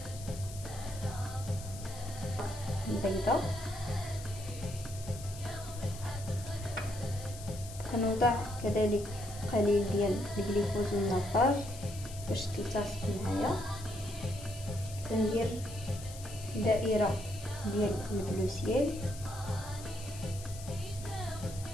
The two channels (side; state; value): left; noise; hiss, 14 dB below the sound